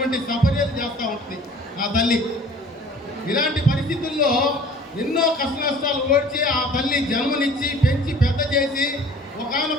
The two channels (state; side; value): normal; both; correlation 0.48